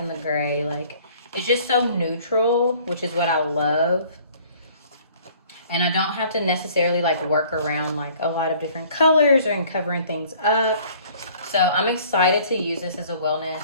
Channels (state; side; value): inverted; both; correlation -0.54